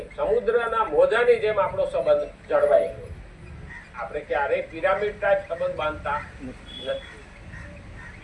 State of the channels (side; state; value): both; identical; correlation 1.00